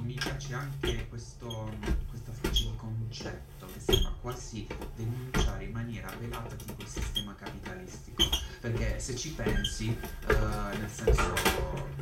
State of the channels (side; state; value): both; identical; correlation 1.00